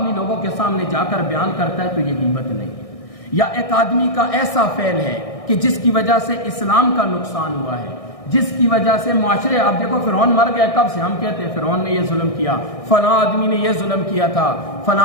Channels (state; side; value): late; right; 1.6 ms